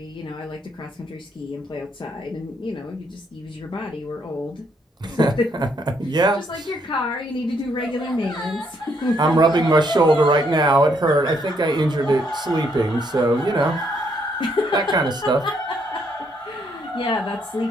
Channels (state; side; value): normal; both; correlation 0.72